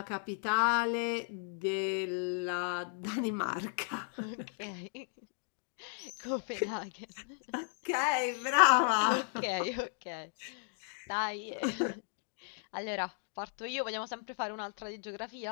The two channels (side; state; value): right; silent; 54 dB below the other